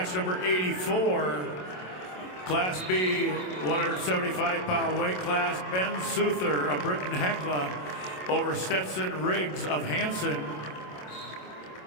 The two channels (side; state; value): right; late; 27 ms